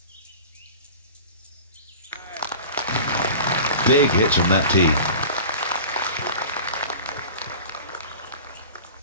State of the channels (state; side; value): inverted; both; correlation -0.37